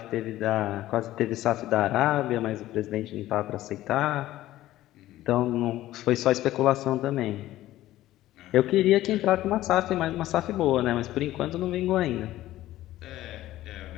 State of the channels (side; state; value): right; quieter; 14.9 dB